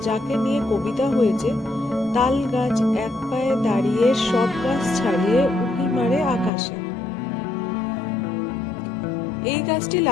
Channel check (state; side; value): drops out; right; at 6.5 s